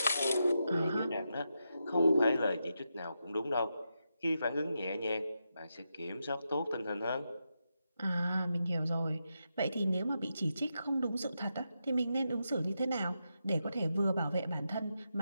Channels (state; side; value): inverted; both; correlation -0.86